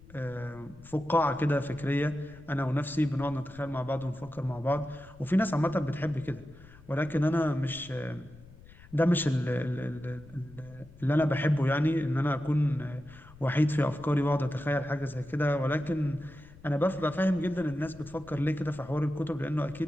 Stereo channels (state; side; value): noise; left; rumble, 21 dB below the sound